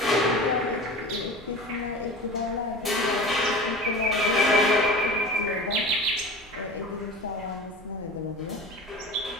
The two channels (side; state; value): both; normal; correlation 0.34